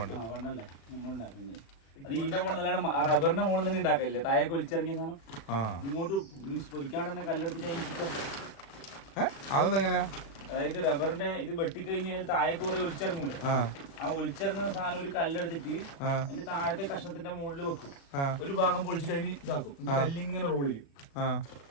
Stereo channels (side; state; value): right; late; 36 ms